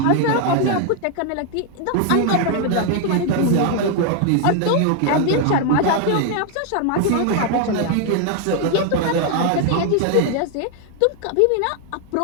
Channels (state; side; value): different; both; correlation 0.00